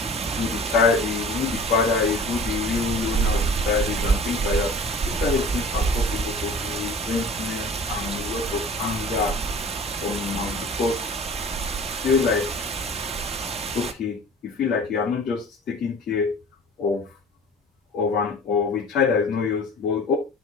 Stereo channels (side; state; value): both; normal; correlation 0.43